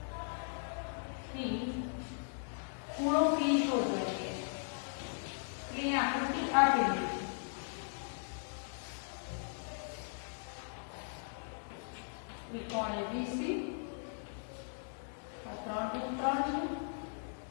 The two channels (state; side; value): silent; right; digital silence